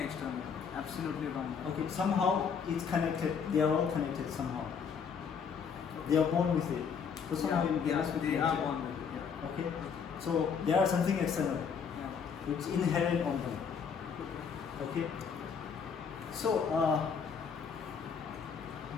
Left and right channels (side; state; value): right; quieter; 6.5 dB